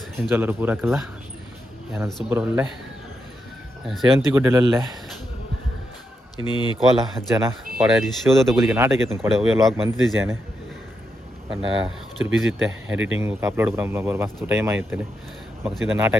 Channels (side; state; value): both; normal; correlation 0.83